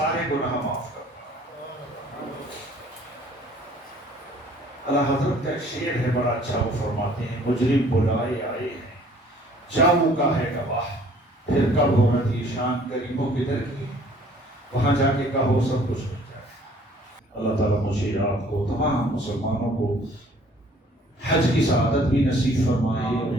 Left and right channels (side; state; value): both; normal; correlation 0.56